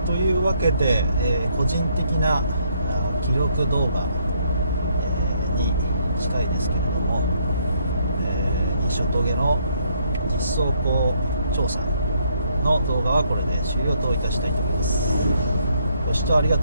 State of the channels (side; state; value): both; inverted; correlation -0.71